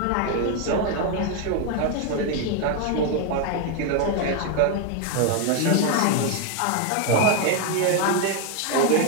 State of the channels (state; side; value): different; both; correlation 0.01